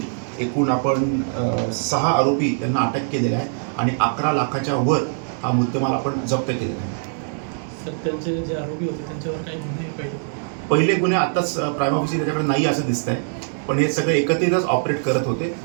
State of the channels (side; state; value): left; silent; 64 dB below the other